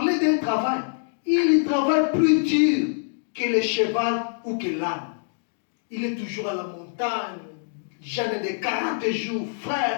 d'un travail, il travaille plus dur que le cheval ou que l'âne. Il est toujours à la montagne, jeûne de 40 jours.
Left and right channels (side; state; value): right; silent; digital silence